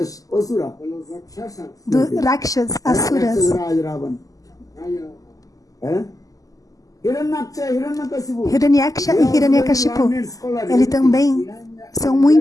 Asura. De los rakshasas. do Rakshas, asuras. Raj Ravan. Hiranyaksha, Hiranyakashipu. Hiranyaksha e Hiranyakashipu, eles também são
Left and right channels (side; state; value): right; late; 0.17 ms